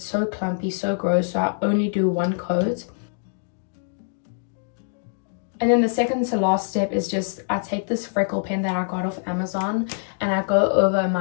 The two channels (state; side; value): silent; right; digital silence